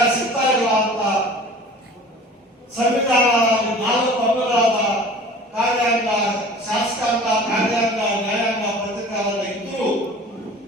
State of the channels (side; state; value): both; normal; correlation 0.43